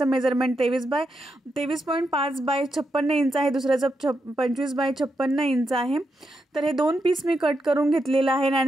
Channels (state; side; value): normal; both; correlation 0.84